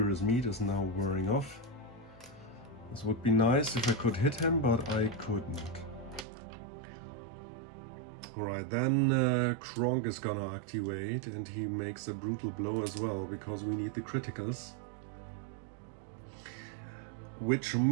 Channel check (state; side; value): drops out; left; at 6.2 s